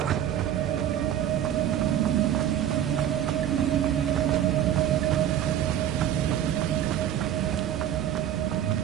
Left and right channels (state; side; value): quieter; left; 10.6 dB